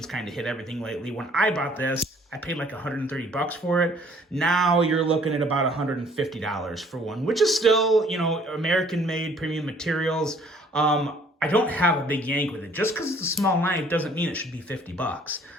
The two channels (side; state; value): both; normal; correlation 0.58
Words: kind of hit everything lately. When I bought this, I paid like $130 for it. Now you're looking at about $150 for one, which is still, you know, American-made premium materials. I don't have a big yank with it. Just because it's a small knife doesn't mean it should be $50.